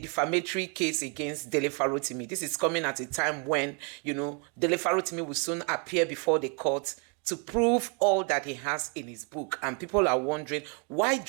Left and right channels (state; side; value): quieter; left; 35.4 dB